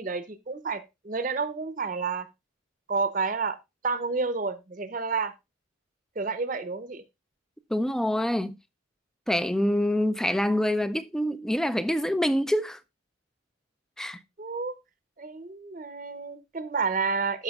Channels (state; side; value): normal; both; correlation 0.45